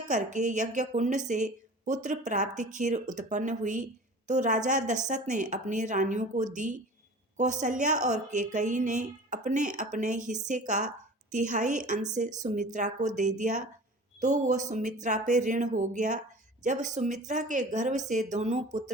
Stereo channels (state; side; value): normal; both; correlation 0.41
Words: यज्ञ कुंड से पुत्र प्राप्ति खीर उत्पन्न हुई, तो राजा दशरथ ने अपनी रानियों को दी। कौशल्या और कैकेयी ने अपने अपने हिस्से का तिहाई अंश सुमित्रा को दे दिया, तो वो सुमित्रा पे ऋण हो गया। जब सुमित्रा के गर्भ से दोनों